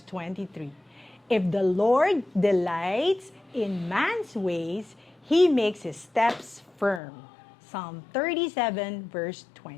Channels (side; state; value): right; drops out; at 7.0 s